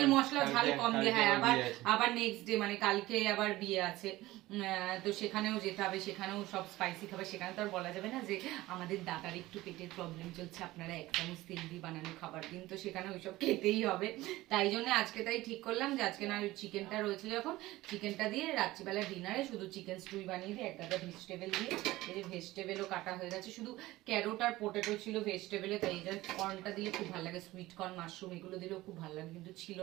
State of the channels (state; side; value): quieter; left; 17.8 dB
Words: মশলা ঝাল কম দিয়ে। হ্যাঁ আবার নেক্সট ডে মানে কালকে আবার বিয়ে আছে, তো সেখানেও যেতে হবে, সেখানেও সব স্পাইসি খাবার, সেখানে তো আর বলা যাবে না যে আমাদের দাদার একটু পেটের প্রবলেম চলছে, আপনারা এক চামচ তেল দিয়ে বানানো খাবার দিন, তো সেখানে ওইসব খেতেই হবে। তাই জন্য আজকে তাই ঠিক করলাম যে আজকে না চিকেনটা রয়েছে যখন, চিকেনটা দিয়ে রাত্রিবেলা ডিনারে শুধু চিকেন স্টুই বানিয়ে দিই, এক গাদা ভেজিটেবল দিয়ে। এই যে ভেজিটেবলও কাটা হয়ে গেছে, শুধু ক্যারোট আর পোটেটো ছিল ভেজিটেবলে, তাই এই যে কর্নটা দিলে খুব ভালো লাগে, সুইট কর্ন মাশরুম এগুলো দিলেও খুব ভালো লাগে, কিন্তু ছিল